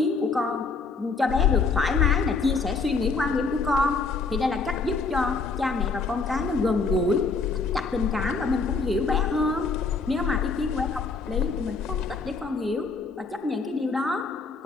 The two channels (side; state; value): right; quieter; 4.3 dB